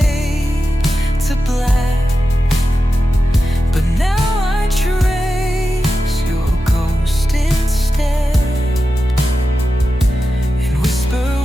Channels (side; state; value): both; normal; correlation 0.91